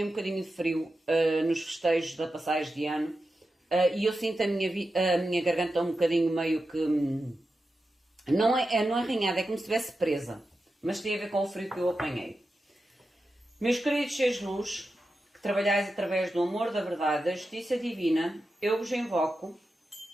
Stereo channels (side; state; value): both; normal; correlation 0.90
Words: um bocadinho de frio nos festejos da passagem de ano e eu sinto a minha garganta um bocadinho meio que, não é arranhada, é como se estivesse presa, mas tem a ver com o frio que eu apanhei. Meus queridos seres de luz, que trabalhais através do amor, da verdade, da justiça divina, eu vos invoco,